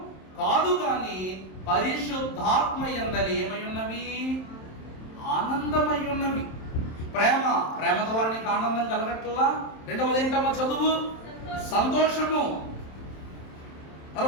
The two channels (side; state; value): right; late; 27 ms